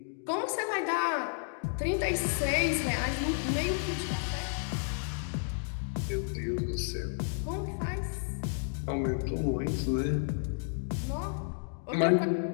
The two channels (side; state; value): right; silent; digital silence